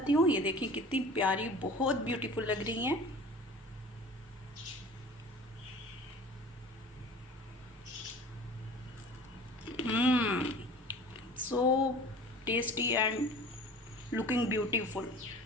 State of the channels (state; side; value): normal; both; correlation 0.42